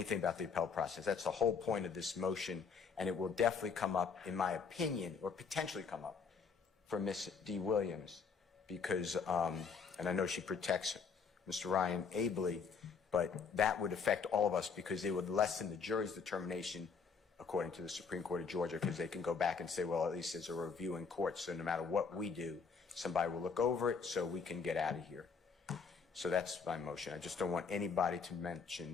about the appellate process. That's the whole point of this motion, and it will definitely come up, in my opinion, or potentially come up for Ms. D. Williams, because, and I know she protects Mr. Ryan ably, but that would affect all of us because it would lessen the jury's determination, according to the Supreme Court of Georgia, because they can go back and say, well, at least there's a review in court, so no matter what we do, somebody will look over it so we can get out of here. So that's my motion. I just don't want anybody to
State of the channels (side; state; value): right; quieter; 5.5 dB